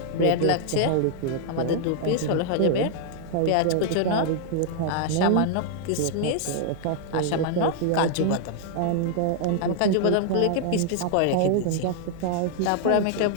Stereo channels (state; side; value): different; both; correlation -0.01